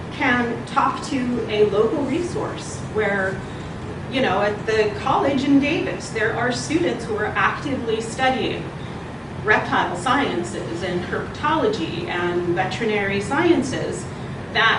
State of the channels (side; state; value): both; identical; correlation 1.00